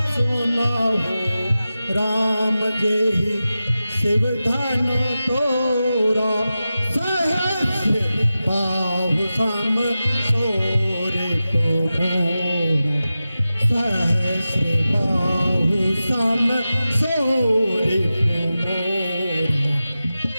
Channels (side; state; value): both; inverted; correlation -0.93